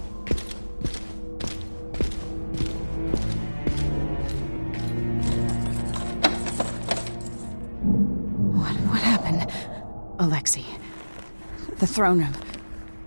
What happened? Alexei. The throne room.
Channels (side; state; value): both; inverted; correlation -1.00